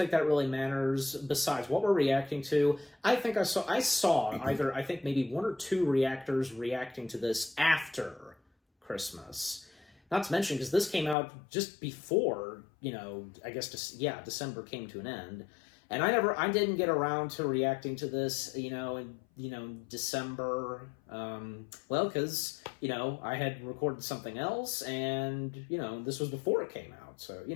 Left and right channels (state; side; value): drops out; right; at 11.2 s